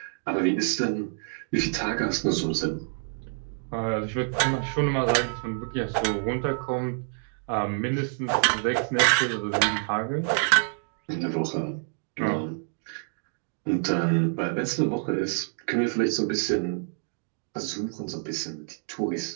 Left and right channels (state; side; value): silent; left; 60 dB below the other